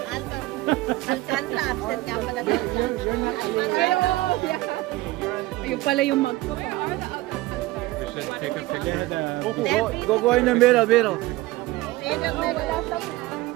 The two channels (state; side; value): quieter; left; 18.8 dB